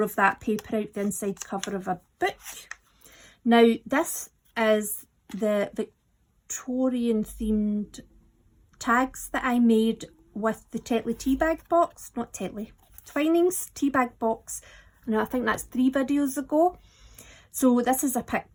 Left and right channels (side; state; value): both; identical; correlation 1.00